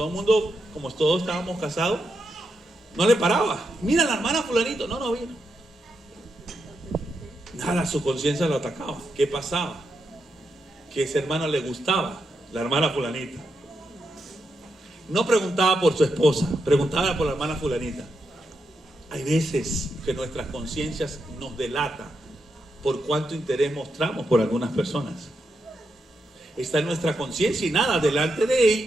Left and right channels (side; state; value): both; normal; correlation 0.84